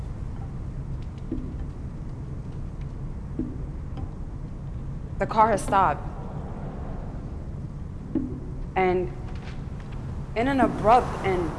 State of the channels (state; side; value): identical; both; correlation 1.00